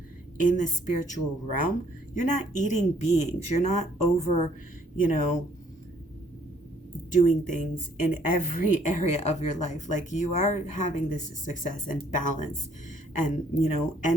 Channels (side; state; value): both; normal; correlation 0.63